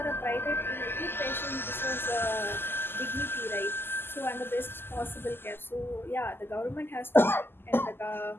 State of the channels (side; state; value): right; late; 0.11 ms